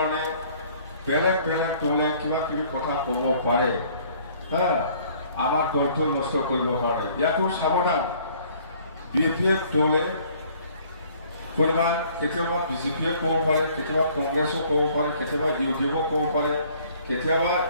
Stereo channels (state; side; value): inverted; both; correlation -0.58